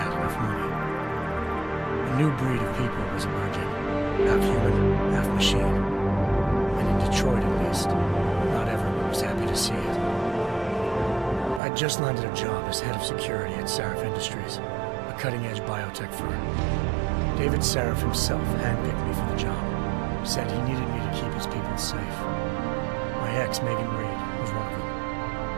enough money. A new breed of people was emerging, half human, half machine. And in Detroit, at least, not everyone was happy to see it. I'd just landed a job as head of security at Sarif Industries, a cutting-edge biotech firm. David Sarif himself handpicked me for the job, said he needed me to keep his people safe. My ex, Megan Reed, was one of them.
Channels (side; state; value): left; drops out; at 11.6 s